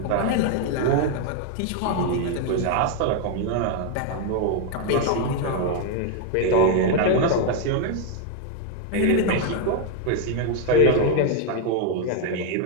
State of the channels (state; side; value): different; both; correlation 0.01